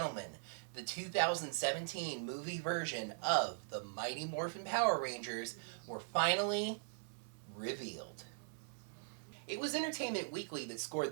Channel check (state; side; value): silent; left; 51 dB below the other